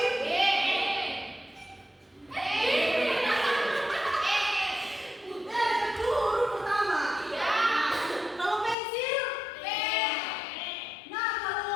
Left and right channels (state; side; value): drops out; right; at 8.8 s